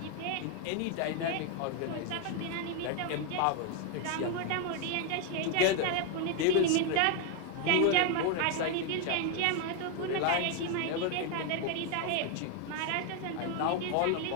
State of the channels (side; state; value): both; different; correlation 0.01